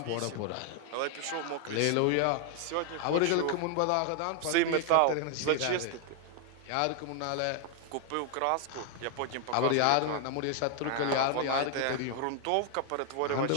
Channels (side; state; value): both; different; correlation 0.00